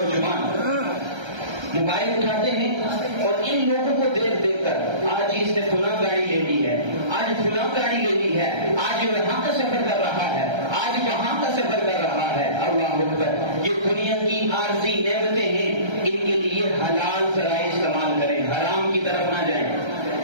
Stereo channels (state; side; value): late; left; 1.3 ms